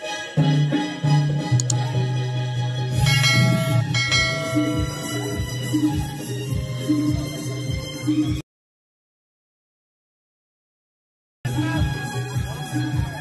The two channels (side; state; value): both; identical; correlation 1.00